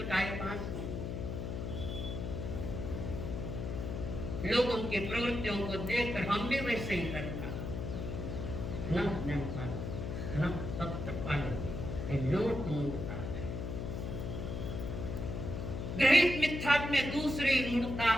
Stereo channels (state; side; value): noise; left; hum, 4 dB below the sound